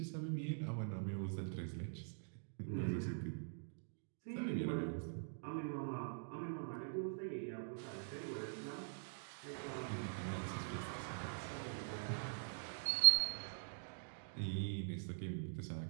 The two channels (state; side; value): silent; left; digital silence